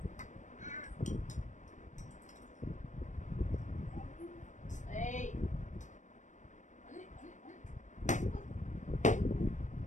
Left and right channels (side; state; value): right; late; 0.35 ms